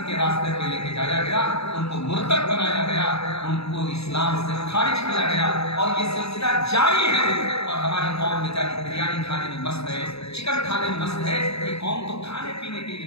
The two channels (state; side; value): late; right; 0.78 ms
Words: के रास्ते पे लेके जाया गया, उनको मुर्तद बनाया गया, उनको इस्लाम से खारिज किया गया। और ये सिलसिला जारी है। और हमारी कौम में जारी बिरयानी खाने में मस्त है, चिकन खाने में मस्त है। ये कौम तो खाने पीने के